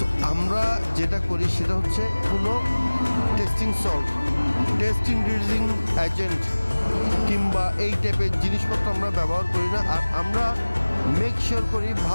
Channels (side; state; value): both; inverted; correlation -1.00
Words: আমরা যেটা করি সেটা হচ্ছে কোনো testing salt, test increasing agent কিংবা এই টাইপের জিনিসপত্র আমরা ব্যবহার করি না। আর আমরা মেক শিওর করি